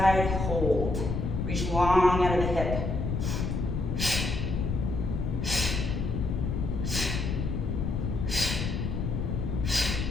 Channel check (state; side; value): noise; left; rumble, 2 dB below the sound